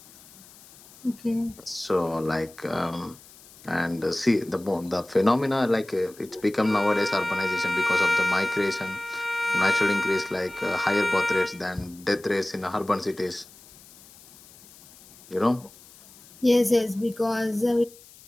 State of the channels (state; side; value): noise; left; hiss, 23 dB below the sound